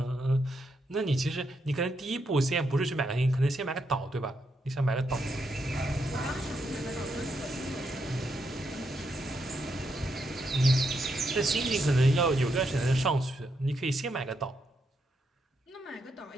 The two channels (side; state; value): both; normal; correlation 0.80